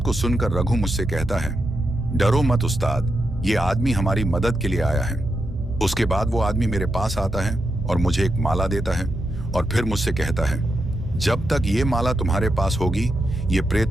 को सुनकर रघु मुझसे कहता है, डरो मत उस्ताद, ये आदमी हमारी मदद के लिए आया है। उसके बाद वो आदमी मेरे पास आता है और मुझे एक माला देता है और फिर मुझसे कहता है, जब तक ये माला तुम्हारे पास होगी ये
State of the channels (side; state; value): both; normal; correlation 0.85